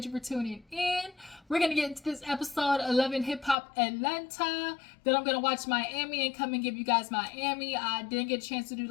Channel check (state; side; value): drops out; right; at 3.6 s